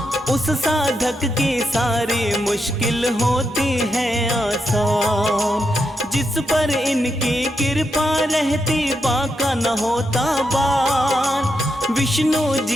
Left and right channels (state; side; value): normal; both; correlation 0.83